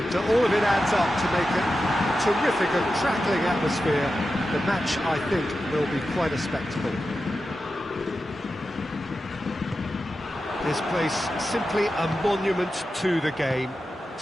all of it adds up to make a terrific and crackling atmosphere. The match, I think, will be quite a spectacle. This place simply a monument to the game.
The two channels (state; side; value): normal; both; correlation 0.91